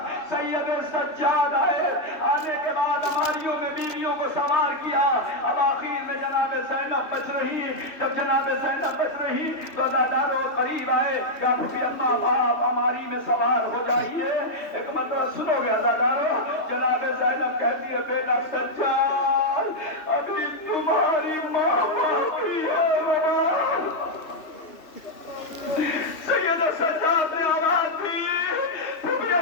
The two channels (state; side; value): late; right; 3.2 ms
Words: سید سجاد آئے، آنے کے بعد اماریوں میں بیویوں کو سوار کیا، اب آخر میں جناب زینب بچ رہی۔ جب جناب زینب بچ رہی تو عزادارو قریب آئے کہ پھوپھی اماں آپ اماری میں سوار ہو جائیے۔ ایک مرتبہ سنو گے عزادارو، جناب زینب کہتی ہے بیٹا سجاد ابھی تمہاری ماں باقی ہے۔ سید سجاد نے آواز دی پھوپھی